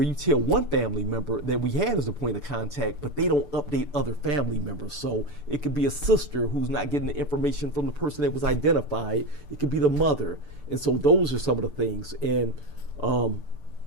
you tell one family member that we had as a point of contact, but they don't update other family members. So it could be a sister who's not getting the information from the person that was identified. It could be the mother. And so those are some of the things. And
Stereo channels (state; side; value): late; left; 6.8 ms